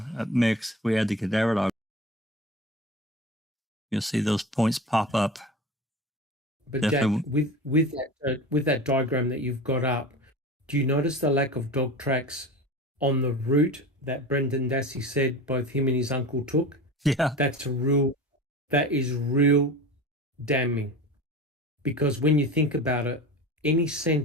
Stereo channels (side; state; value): both; normal; correlation 0.32